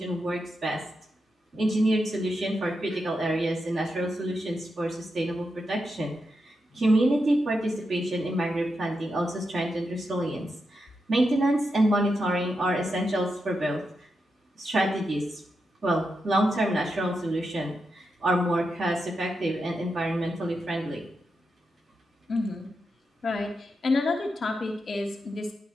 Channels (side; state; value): both; normal; correlation 0.86